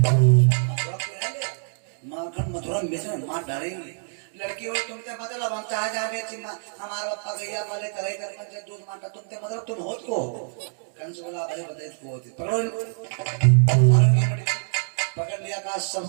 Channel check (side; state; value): left; silent; digital silence